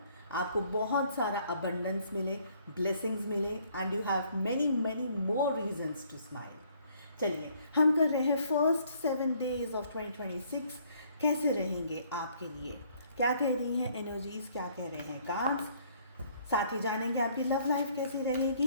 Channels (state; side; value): inverted; both; correlation -0.63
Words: आपको बहुत सारा अबंडेंस मिले, ब्लेसिंग्स मिले and you have many many more reasons to smile. चलिए हम कर रहे हैं फर्स्ट 7 days ऑफ 2026. कैसे रहेंगे आपके लिए, क्या कह रही हैं एनर्जीज, क्या कह रहे हैं कार्ड्स. साथ ही जानेंगे आपकी लव लाइफ कैसी